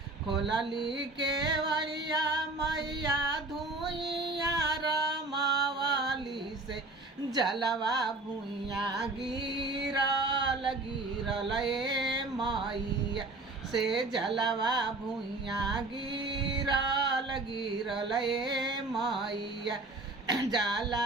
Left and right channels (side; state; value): left; quieter; 3.2 dB